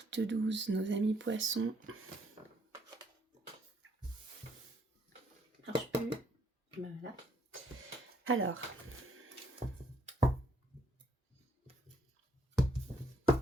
12, nos amis poissons. Marche plus. Voilà. Alors,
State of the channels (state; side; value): normal; both; correlation 0.69